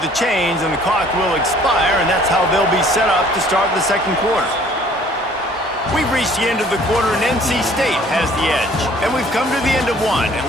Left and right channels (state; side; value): normal; both; correlation 0.56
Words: chains, and the clock will expire, and that's how they'll be set up to start the second quarter. We've reached the end of the quarter, and NC State has the edge. And we've come to the end of one, and